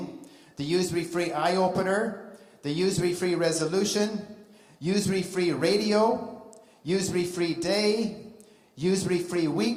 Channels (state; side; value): identical; both; correlation 1.00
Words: the Usury-Free Eye-Opener, the Usury-Free Resolution, Usury-Free Radio, Usury-Free Day, Usury-Free